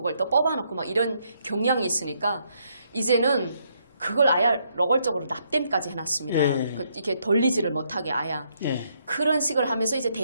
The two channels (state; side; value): inverted; both; correlation -0.74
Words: 또 뽑아놓고 막 이런 경향이 있으니까 이제는 그걸 아예 노골적으로 납땜까지 해놨습니다. 예. 이렇게 돌리지를 못하게 아야. 예. 그런 식을 하면서 이제